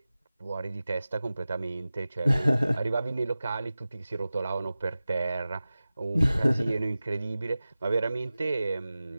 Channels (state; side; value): inverted; both; correlation -0.96